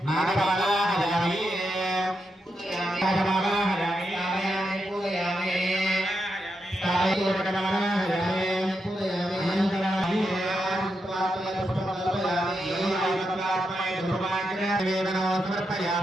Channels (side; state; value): both; normal; correlation 0.85